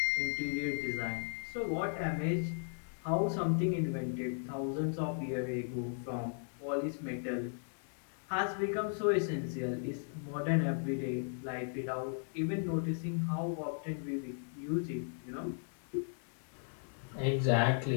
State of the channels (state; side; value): silent; right; digital silence